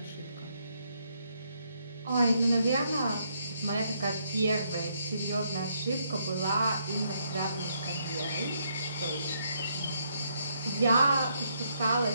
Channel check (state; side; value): inverted; both; correlation -0.74